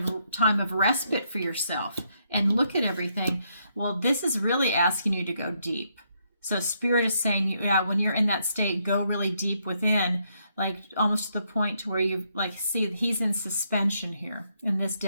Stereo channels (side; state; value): both; inverted; correlation -0.75